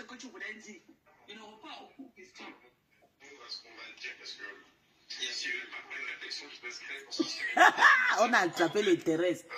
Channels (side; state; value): both; identical; correlation 1.00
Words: que tu voulais dire. Ils n'auront pas aucune question. Ce qu'on va dire, parce que s'il n'y avait pas une réflexion qui peut se créer pour ça. On a attrapé les terrestres.